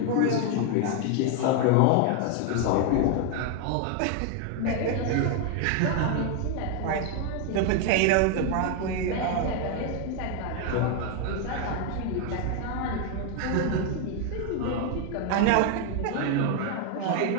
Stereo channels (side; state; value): both; different; correlation 0.01